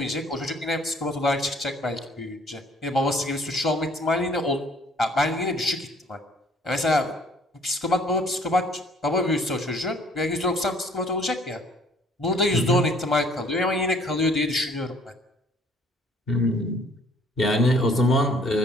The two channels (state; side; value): normal; both; correlation 0.58